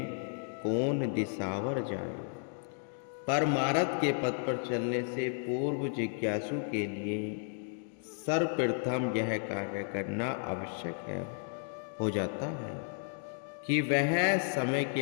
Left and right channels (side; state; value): right; silent; digital silence